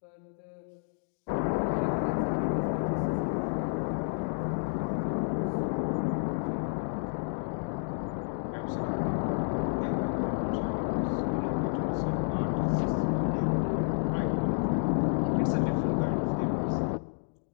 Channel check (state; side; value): silent; right; digital silence